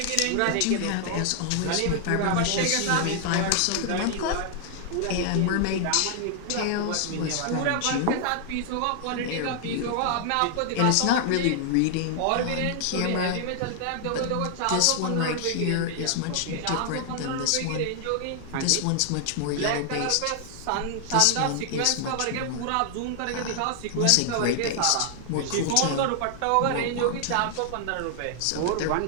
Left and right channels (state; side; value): different; both; correlation 0.00